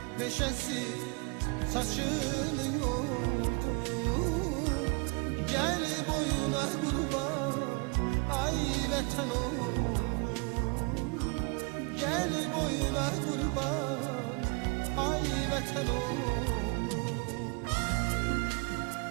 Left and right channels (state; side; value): quieter; left; 30.9 dB